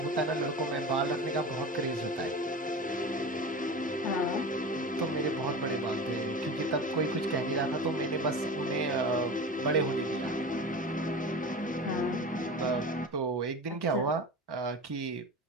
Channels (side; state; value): both; normal; correlation 0.31